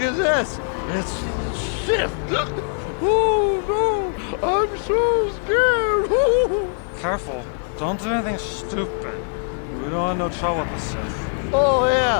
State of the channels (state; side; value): silent; right; 64 dB below the other